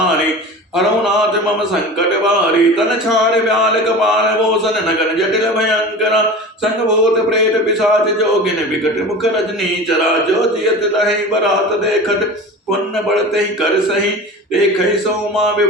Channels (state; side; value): normal; both; correlation 0.34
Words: हरौ नाथ मम संकट भारी, तन छाड़ ब्याल कपाल भूषण। नगन जटिल भयंकरा, संग भूत प्रेत पिशाच जोगिन। विकट मुख रजनी चरा, जो जियत रहे बरात देखत। पुण्य बढ़ते ही कर सही, देखहि सोमा